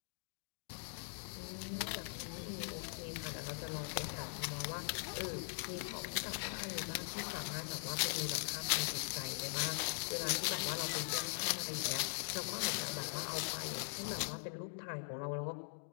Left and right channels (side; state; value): right; silent; digital silence